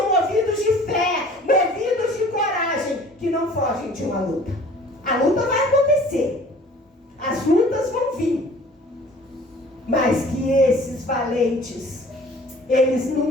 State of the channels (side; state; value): both; normal; correlation 0.49